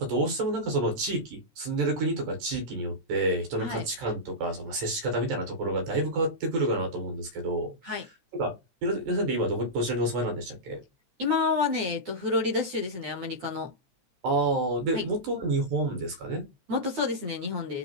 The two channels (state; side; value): late; left; 12 ms